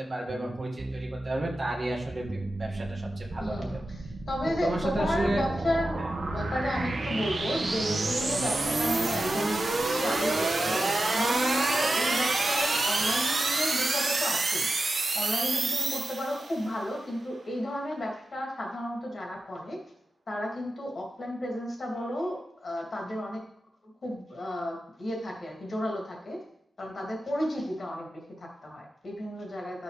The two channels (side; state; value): both; normal; correlation 0.91